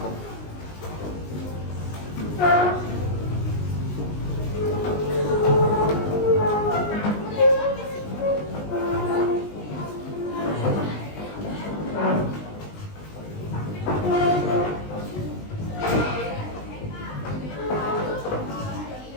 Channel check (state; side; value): late; right; 19 ms